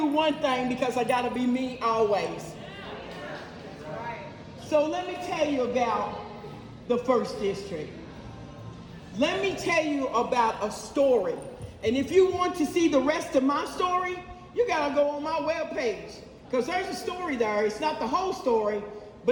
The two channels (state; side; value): identical; both; correlation 1.00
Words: one thing because I got to be me always. So let me tell you about the 1st District. Let me tell you about a story. And if you want to see the rest of my story, you gotta go on my webpage. Because there's a story there. It's not the whole story,